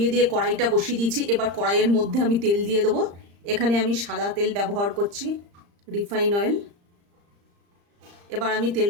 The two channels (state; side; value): late; left; 35 ms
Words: দিয়ে কড়াইটা বসিয়ে দিয়েছি। এবার কড়াইয়ের মধ্যে আমি তেল দিয়ে দেবো। এখানে আমি সাদা তেল ব্যবহার করছি, রিফাইন অয়েল। এবার আমি